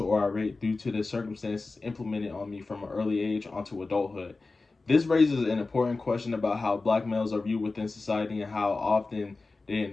or irate due to the circumstances implemented on me from an early age onto adulthood. This raises an important question about how black males are viewed within society and how often they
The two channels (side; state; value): right; quieter; 3.7 dB